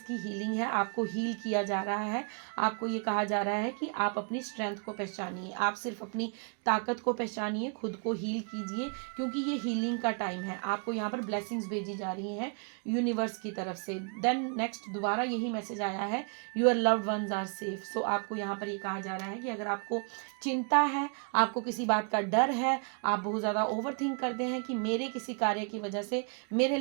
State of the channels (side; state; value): left; quieter; 39.3 dB